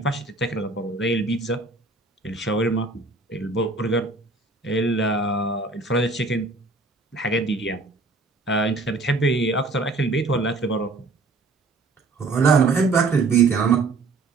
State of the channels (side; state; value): left; quieter; 3.7 dB